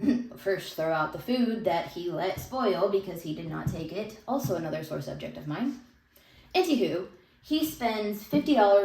first throw out the food that he let spoil because he did not take it. Also another sore subject of mine. Anywho, he spends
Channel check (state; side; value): identical; both; correlation 1.00